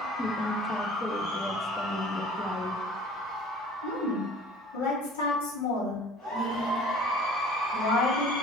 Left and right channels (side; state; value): both; normal; correlation 0.46